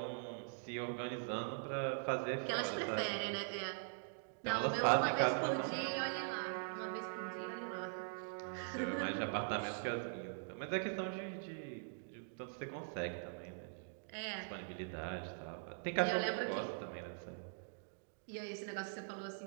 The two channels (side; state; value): left; silent; digital silence